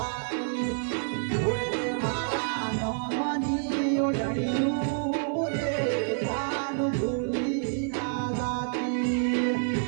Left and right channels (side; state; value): left; silent; 59 dB below the other